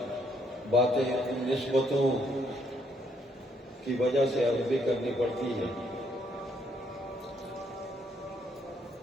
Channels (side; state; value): both; normal; correlation 0.71